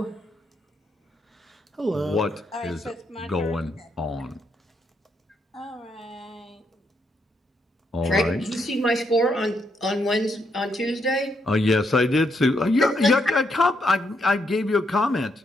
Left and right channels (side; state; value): both; normal; correlation 0.77